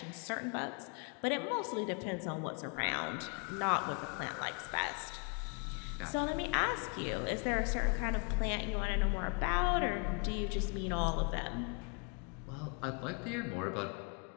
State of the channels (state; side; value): quieter; right; 36.7 dB